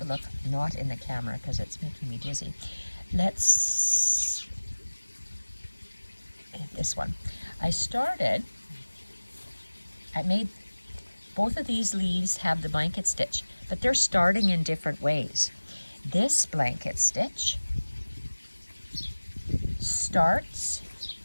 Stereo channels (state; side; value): inverted; both; correlation -1.00